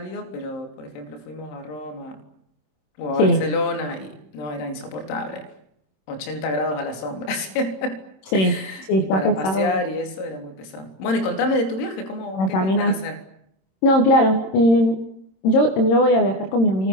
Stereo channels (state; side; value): late; right; 27 ms